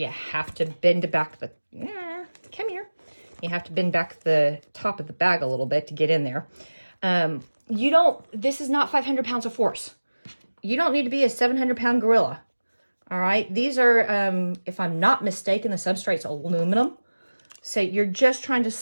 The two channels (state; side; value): inverted; both; correlation -1.00